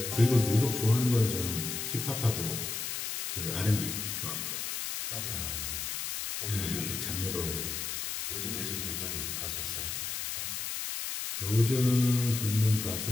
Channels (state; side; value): noise; left; hiss, 4 dB below the sound